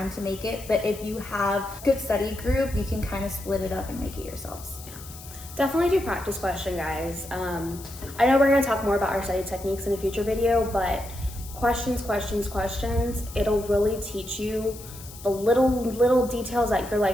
to make it, but if you have a good study group, you can kind of split it up and make it yourselves. Definitely do practice question, guys. I know we're going to talk more about our study techniques in a future video, but questions, it'll really teach you the little details that you're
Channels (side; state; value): left; noise; hiss, 16 dB below the sound